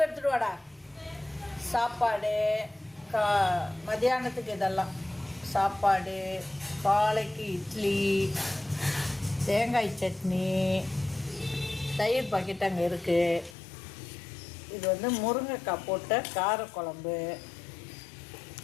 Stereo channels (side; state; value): right; drops out; at 13.6 s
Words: எடுத்துட்டு வாடா. சாப்பாடு மதியானத்துக்கு இதெல்லாம் சாப்பாடு, காலைக்கு இட்லி, தேங்காய் சட்னி, தயிர் பாக்கெட் அங்கே இருக்குது. இது முருங்கைக்காய் போட்ட காரக்குழம்பு.